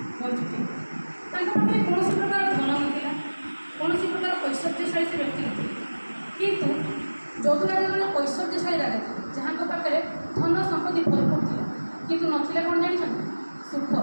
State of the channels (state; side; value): inverted; both; correlation -1.00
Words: ବଞ୍ଚୁଥିଲେ। ତାଙ୍କ ପାଖରେ କୌଣସି ପ୍ରକାର ଧନ ନଥିଲା, କୌଣସି ପ୍ରକାର ଐଶ୍ୱର୍ଯ୍ୟଶାଳୀ ସେ ବ୍ୟକ୍ତି ନଥିଲେ। କିନ୍ତୁ ଯଦୁରାଜ ଜଣେ ଐଶ୍ୱର୍ଯ୍ୟଶାଳୀ ରାଜା ଥିଲେ, ଯାହାଙ୍କ ପାଖରେ ଧନ ସମ୍ପତ୍ତି ଭରପୁର ଥିଲା, କିନ୍ତୁ ନଥିଲା କ'ଣ ଜାଣିଛନ୍ତି? ସୁଖ,